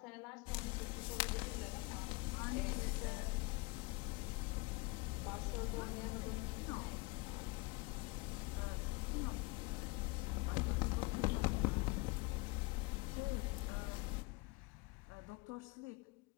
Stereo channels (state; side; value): quieter; right; 25.5 dB